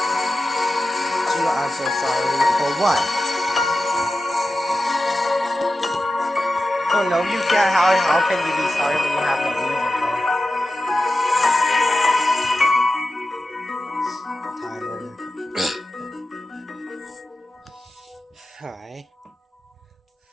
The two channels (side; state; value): both; normal; correlation 0.92